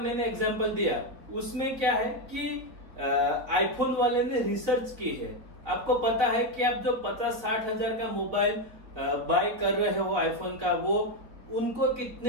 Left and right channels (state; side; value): late; left; 4.3 ms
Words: एग्जांपल दिया, उसमें क्या है कि आईफोन वाले ने रिसर्च की है। आपको पता है कि आप जो 50-60 हजार का मोबाइल बाय कर रहे हो आईफोन का, वो उनको